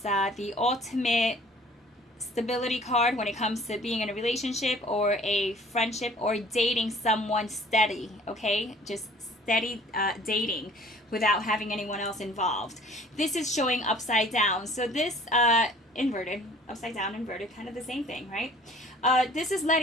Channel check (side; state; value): both; normal; correlation 0.52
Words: the ultimate stability card when it comes to being in a relationship or a friendship or dating someone steady, okay? Just steady dating without having anyone else involved. This is showing upside down. So this inverted, upside down, inverted, kind of the same thing, right? This is